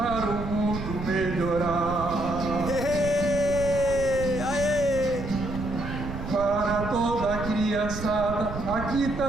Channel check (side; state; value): right; noise; rumble, 8 dB below the sound